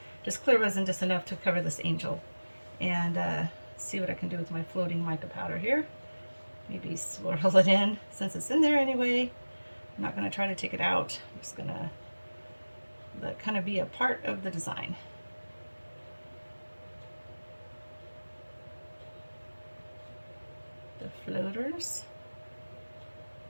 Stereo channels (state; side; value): inverted; both; correlation -1.00